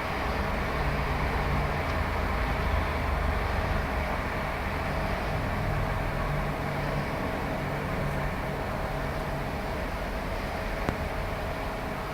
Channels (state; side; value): identical; both; correlation 1.00